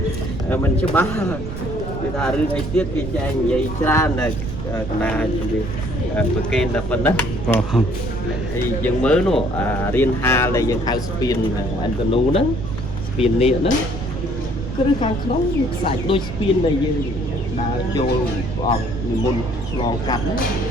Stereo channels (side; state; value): right; noise; rumble, 7 dB below the sound